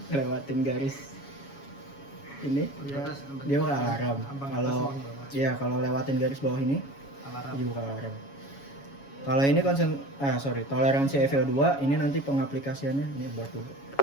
garis ini, dia bakal alarm. Kalau lewatin garis bawah ini, dia bakal alarm. Kalau ini toleransi EVO2 ini nanti pengaplikasiannya ini buat dulu.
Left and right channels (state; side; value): late; right; 7.2 ms